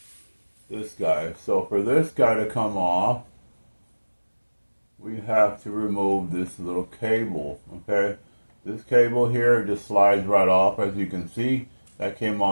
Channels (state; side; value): inverted; both; correlation -1.00